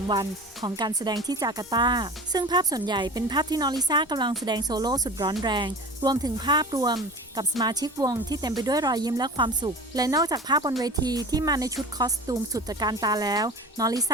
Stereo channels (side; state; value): both; normal; correlation 0.36